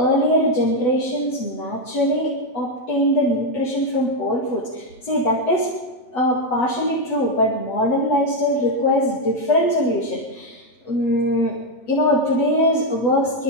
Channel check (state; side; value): late; right; 8.1 ms